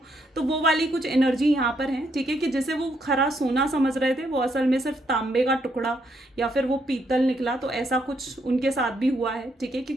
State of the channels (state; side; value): normal; both; correlation 0.75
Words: तो वो वाली कुछ एनर्जी यहाँ पर है, ठीक है, कि जैसे वो खरा सोना समझ रहे थे, वो असल में सिर्फ तांबे का टुकड़ा या फिर वो पीतल निकला। तो ऐसा कुछ उनके साथ भी हुआ है, ठीक है,